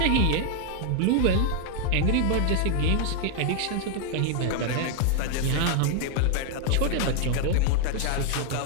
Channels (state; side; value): different; both; correlation 0.00